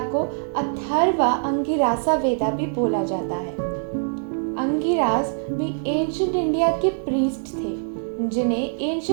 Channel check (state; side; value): silent; left; 63 dB below the other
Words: को अथर्वा अंगिरासा वेदा भी बोला जाता है। अंगिरास भी एंशिएंट इंडिया के प्रीस्ट थे, जिन्हें